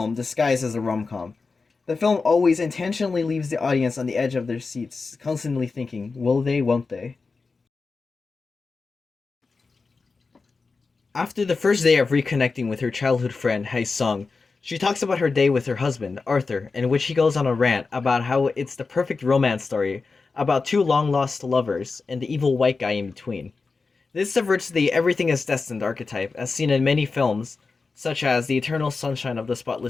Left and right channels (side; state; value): right; quieter; 4.3 dB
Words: disguised as a rom-com. The film always intentionally leaves the audience on the edge of their seats, constantly thinking, will they, won't they? After the first day of reconnecting with her childhood friend, Hae Sung, she talks about her day with her husband, Arthur, in which he goes on a rant about how it's the perfect romance story about two long-lost lovers and the evil white guy in between. This subverts the everything is destined archetype as seen in many films, such as The Eternal Sunshine of the